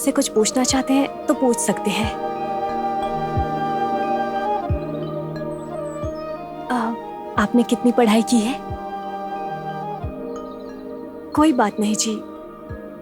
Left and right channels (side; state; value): both; identical; correlation 1.00